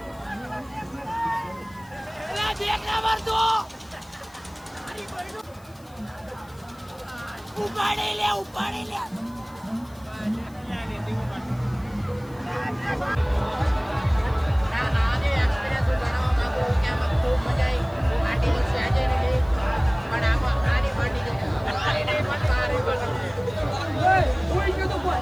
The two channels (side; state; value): left; noise; hiss, 27 dB below the sound